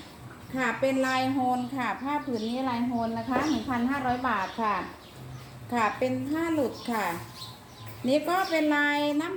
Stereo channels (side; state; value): both; identical; correlation 1.00